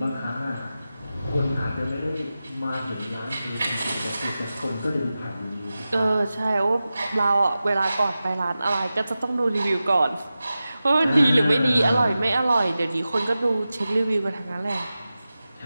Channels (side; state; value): both; inverted; correlation -0.94